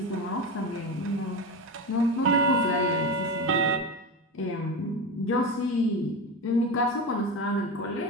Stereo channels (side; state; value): both; normal; correlation 0.21